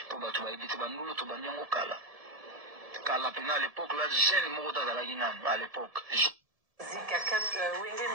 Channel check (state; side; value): late; left; 1.7 ms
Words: mpo bato bayebi te bandulu tobandi yango kala mpena à l'époque là jeune moko to azalaki nano à l'époque Wenge